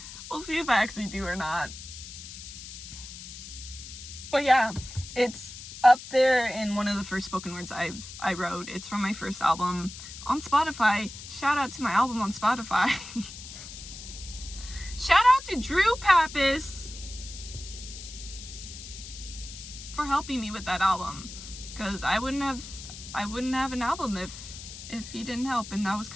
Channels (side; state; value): left; noise; hiss, 12 dB below the sound